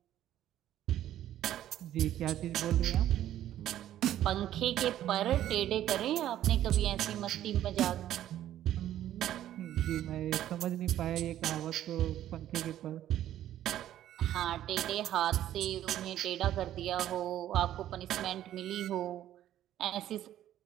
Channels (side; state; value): left; quieter; 12.2 dB